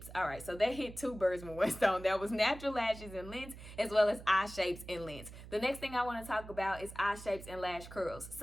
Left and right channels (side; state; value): right; noise; hum, 14 dB below the sound